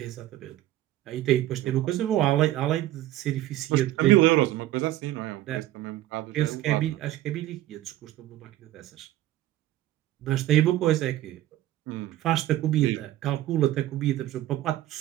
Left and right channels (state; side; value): quieter; left; 14.4 dB